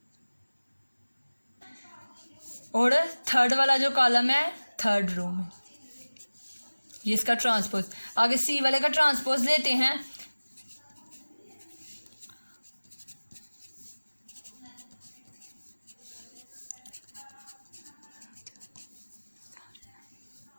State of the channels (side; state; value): both; inverted; correlation -1.00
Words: और थर्ड वाला जो कॉलम है थर्ड रो में, ये इसका ट्रांसपोज। आगे सी वाले का ट्रांसपोज लेते हैं,